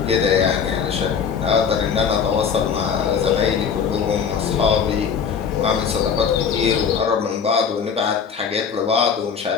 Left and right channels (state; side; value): quieter; right; 6.8 dB